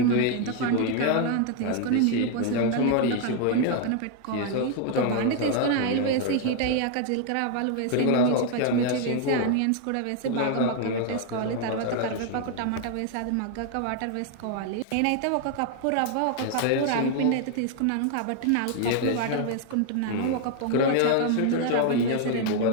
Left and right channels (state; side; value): different; both; correlation 0.00